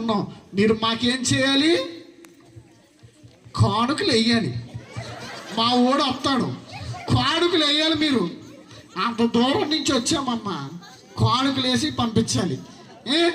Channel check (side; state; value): both; identical; correlation 1.00